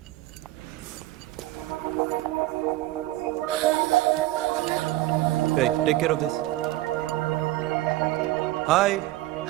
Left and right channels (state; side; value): quieter; left; 16.8 dB